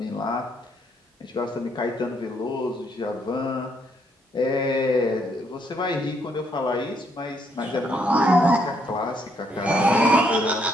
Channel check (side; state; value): both; normal; correlation 0.72